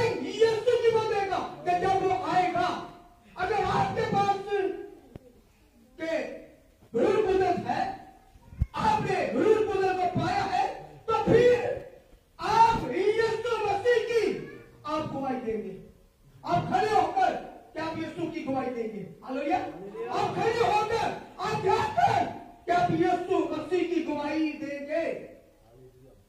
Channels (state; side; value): identical; both; correlation 1.00